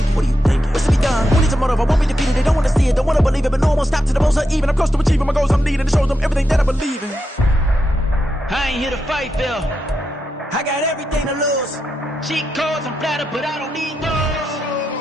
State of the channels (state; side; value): normal; both; correlation 0.86